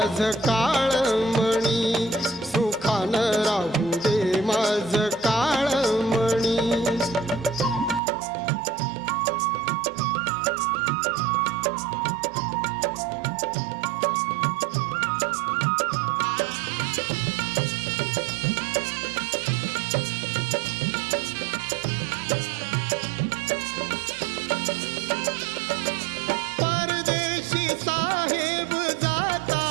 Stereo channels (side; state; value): left; drops out; at 8.0 s